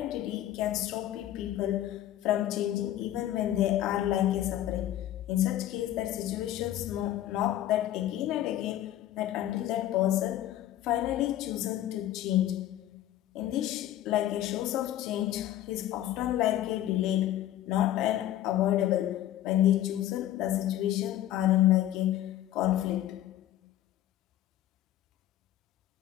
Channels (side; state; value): right; quieter; 12.9 dB